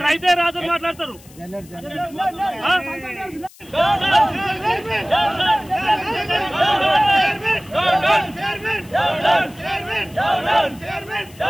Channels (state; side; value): noise; left; hiss, 24 dB below the sound